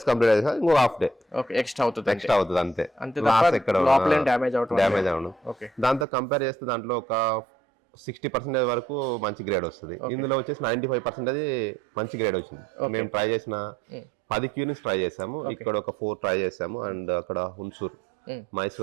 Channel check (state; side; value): drops out; left; at 6.1 s